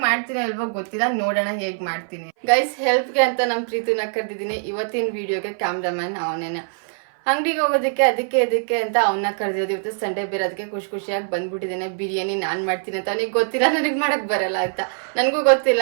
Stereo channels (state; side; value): silent; left; 59 dB below the other